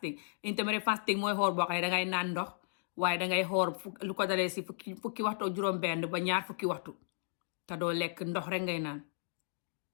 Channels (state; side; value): silent; right; digital silence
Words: fasting mooy xool boo xam ne dangay naan ndox waaye dangay xoor lu ko dalee si fukki waxtu juróom benn ba ñaar fukki waxtu te doo lekk ndox rek ngay naan